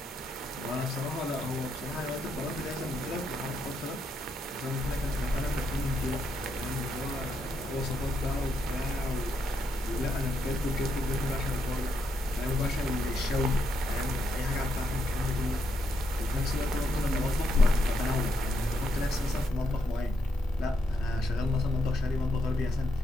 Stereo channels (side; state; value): both; normal; correlation 0.79